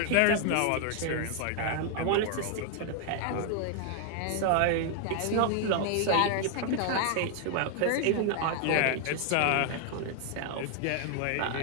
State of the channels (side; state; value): both; different; correlation 0.00